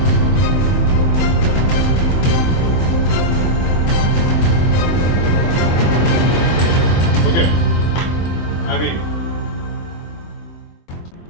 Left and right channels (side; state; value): right; late; 23 ms